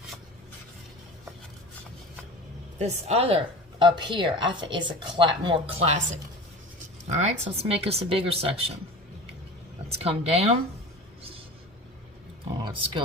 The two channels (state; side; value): normal; both; correlation 0.35